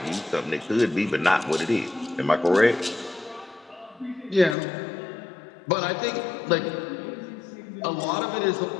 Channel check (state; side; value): drops out; right; at 4.5 s